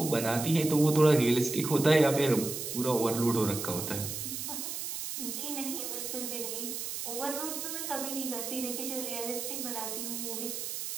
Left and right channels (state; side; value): noise; right; hiss, 5 dB below the sound